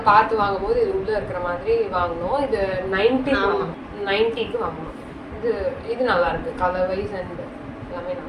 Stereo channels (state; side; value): identical; both; correlation 1.00